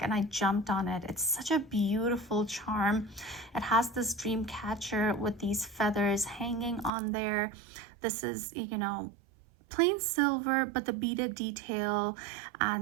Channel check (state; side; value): drops out; left; at 6.9 s